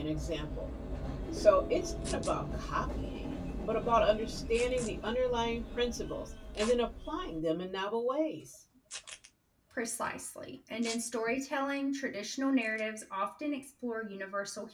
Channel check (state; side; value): identical; both; correlation 1.00